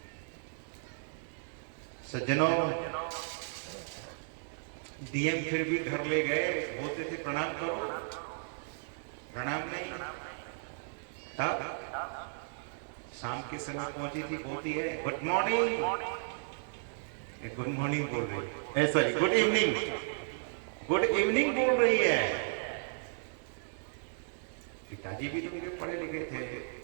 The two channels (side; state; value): left; silent; digital silence